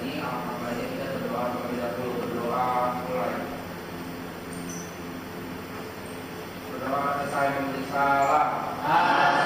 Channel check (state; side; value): identical; both; correlation 1.00